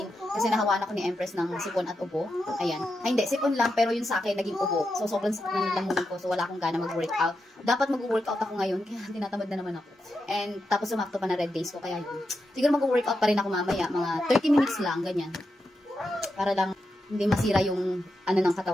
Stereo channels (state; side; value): normal; both; correlation 0.86